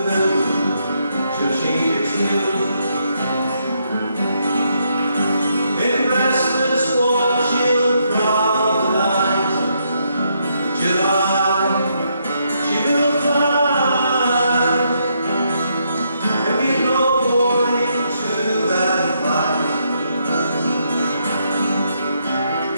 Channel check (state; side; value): inverted; both; correlation -0.76